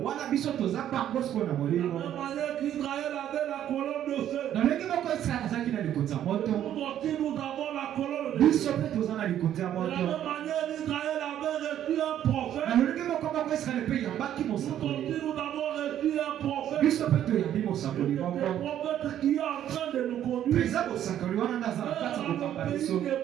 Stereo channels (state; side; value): quieter; left; 11.0 dB